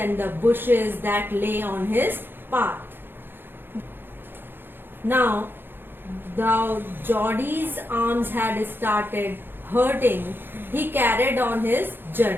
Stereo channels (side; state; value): left; late; 0.10 ms